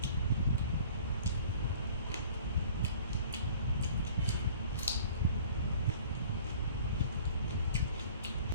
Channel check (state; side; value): inverted; both; correlation -0.49